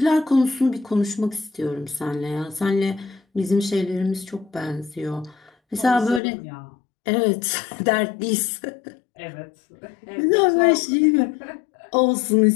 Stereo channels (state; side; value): drops out; right; at 6.2 s